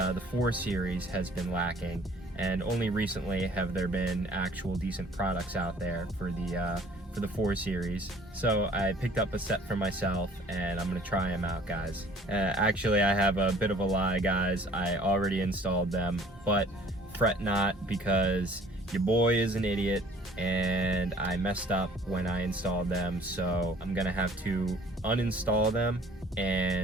4 Series has been lacking. And only recently have there been actual decent products out there for the 4 Series. So I picked up a set for myself and I'm gonna try them out, guys. Actually, I have a bit of a lie, guys. I already installed them, but fret not, because your boy is an idiot and I messed up when I installed them. So I'm gonna have to uninstall them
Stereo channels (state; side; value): normal; both; correlation 0.54